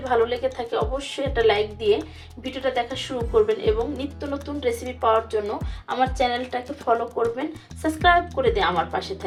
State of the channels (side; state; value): both; identical; correlation 1.00